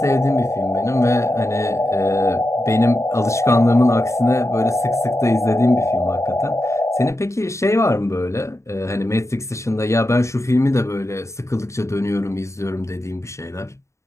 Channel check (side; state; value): right; late; 0.14 ms